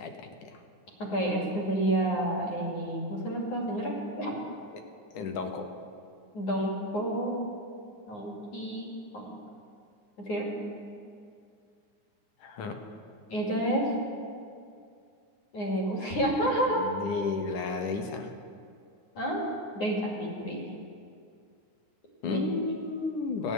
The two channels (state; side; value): late; right; 10 ms